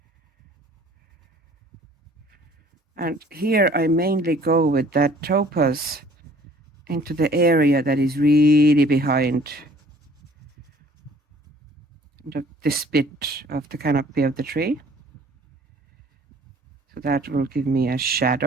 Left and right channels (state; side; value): normal; both; correlation 0.54